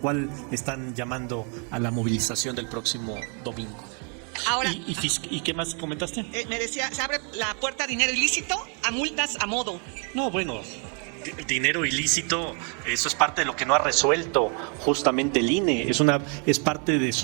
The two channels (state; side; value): quieter; left; 38.3 dB